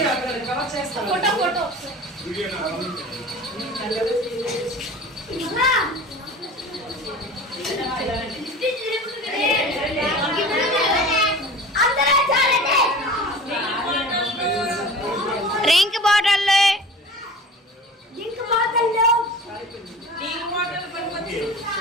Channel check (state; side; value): normal; both; correlation 0.38